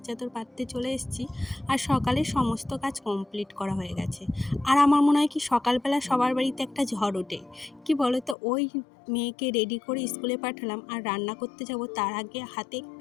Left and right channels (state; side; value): drops out; right; at 8.3 s